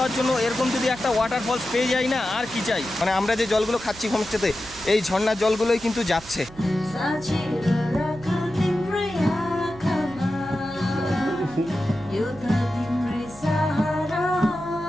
জন্য এরকম যদি একটা ওয়াটারফলস পেয়ে যাই না, আর কি চাই। মানে আমরা যে জলগুলো খাচ্ছি হোমস্টেতে, এই ঝর্ণার জলগুলোই কিন্তু যাচ্ছে।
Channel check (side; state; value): right; noise; hum, 19 dB below the sound